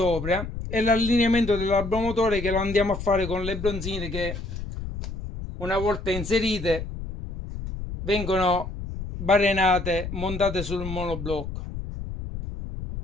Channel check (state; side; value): noise; left; rumble, 7 dB below the sound